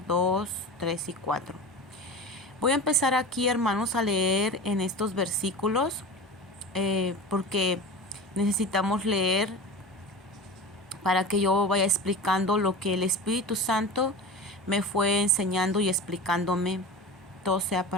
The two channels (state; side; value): normal; both; correlation 0.31